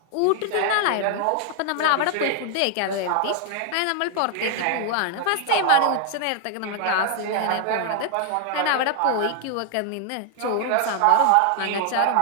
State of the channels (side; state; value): both; different; correlation 0.00